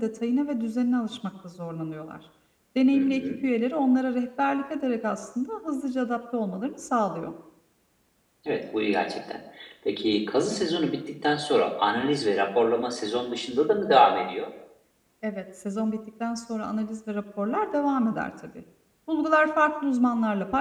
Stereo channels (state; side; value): identical; both; correlation 1.00